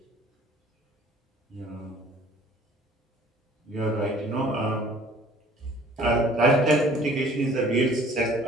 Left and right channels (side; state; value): both; normal; correlation 0.53